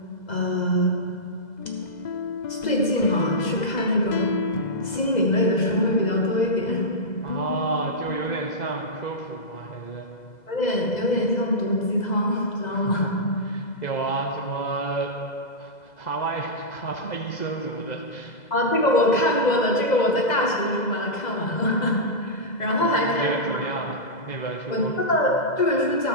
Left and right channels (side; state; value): right; late; 2.0 ms